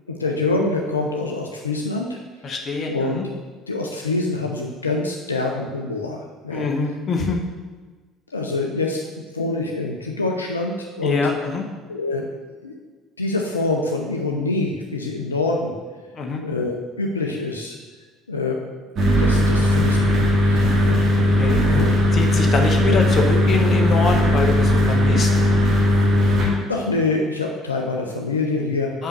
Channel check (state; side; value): normal; both; correlation 0.52